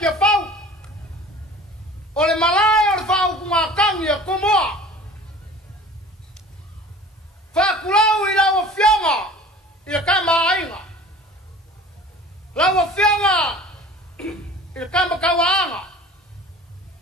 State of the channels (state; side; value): normal; both; correlation 0.43